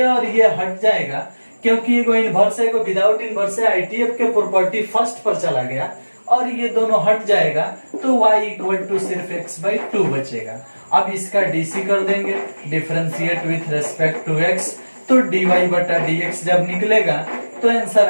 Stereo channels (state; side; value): inverted; both; correlation -1.00